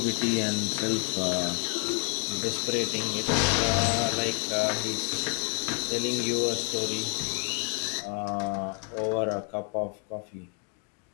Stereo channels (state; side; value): quieter; right; 39.6 dB